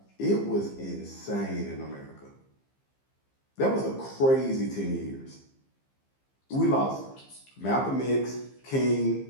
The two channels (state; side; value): late; right; 15 ms